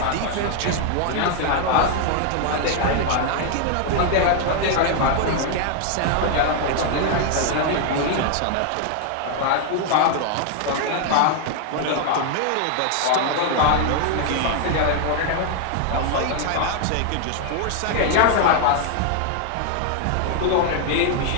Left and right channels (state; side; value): different; both; correlation 0.00